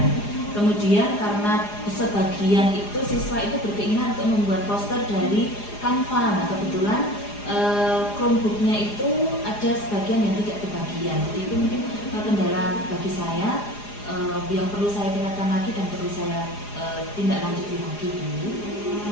Kemudian karena sebagian itu siswa itu berkeinginan untuk membuat poster dari Canva. Nah, kebetulan Chromebooknya itu ada sebagian yang tidak kebagian. Jadi itu mungkin kendala bagi saya yang perlu saya tingkatkan lagi dan perlu saya tindak lanjuti lagi Bu.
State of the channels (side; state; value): right; late; 4.9 ms